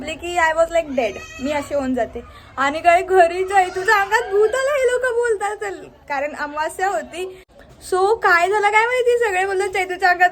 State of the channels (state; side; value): identical; both; correlation 1.00